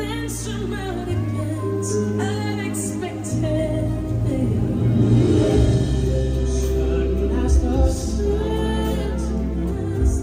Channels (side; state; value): both; identical; correlation 1.00